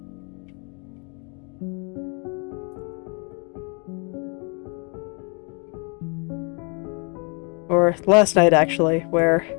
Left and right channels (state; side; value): quieter; right; 35.0 dB